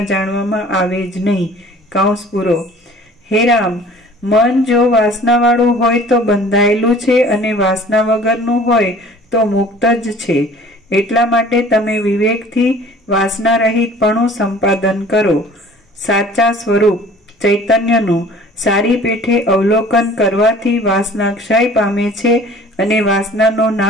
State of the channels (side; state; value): both; normal; correlation 0.49